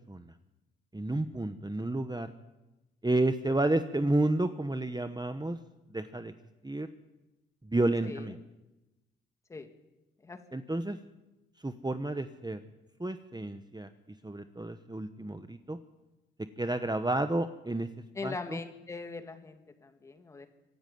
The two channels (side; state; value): both; normal; correlation 0.84